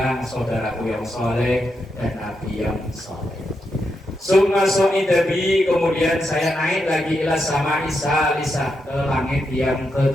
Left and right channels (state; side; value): normal; both; correlation 0.84